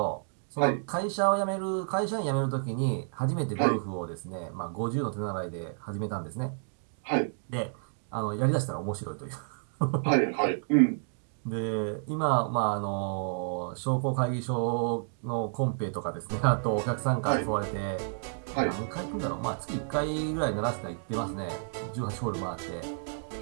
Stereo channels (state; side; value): silent; left; digital silence